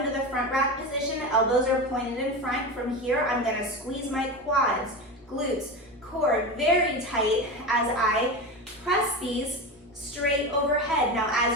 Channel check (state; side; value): normal; both; correlation 0.23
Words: the front rack position. Elbows are pointed in front. From here, I'm going to squeeze my quads, glutes, core very tight as I press these straight overhead. Now,